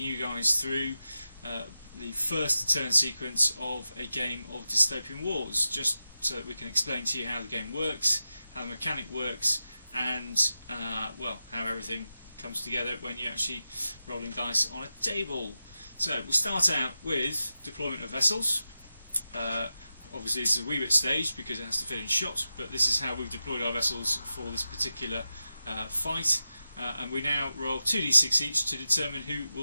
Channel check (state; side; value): inverted; both; correlation -0.91